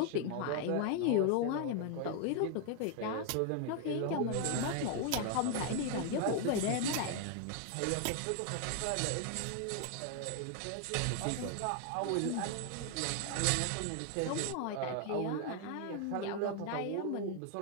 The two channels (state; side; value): different; both; correlation 0.00